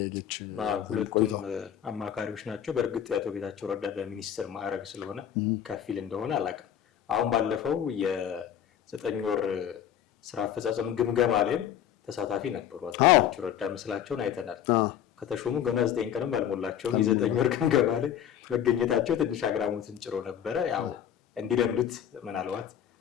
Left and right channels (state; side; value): quieter; right; 9.8 dB